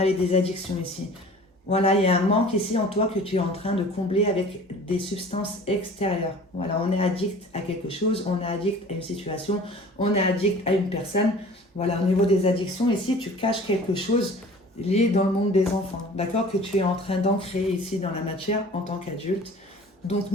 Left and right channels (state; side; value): normal; both; correlation 0.45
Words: des addictions ici. Voilà, il y a un manque ici en toi que tu es en train de combler avec des substances extérieures. Voilà, on est addict à quelque chose, on est addict à une situation, on est addict à une personne. Voilà, au niveau des addictions, ici, tu caches quelque chose lié dans le monde des enfants. D'accord? Que tu es en train d'ancrer ici dans la matière en tant qu'adulte. Donc,